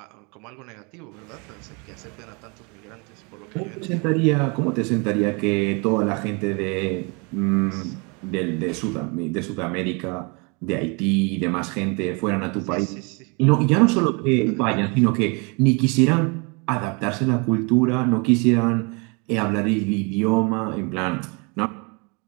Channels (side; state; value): left; quieter; 31.6 dB